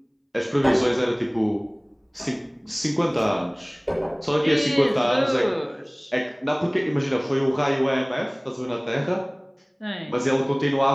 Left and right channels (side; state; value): both; identical; correlation 1.00